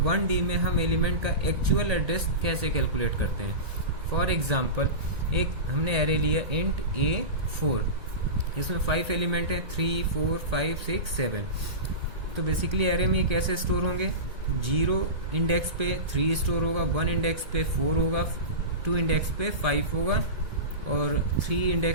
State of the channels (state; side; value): late; left; 1.8 ms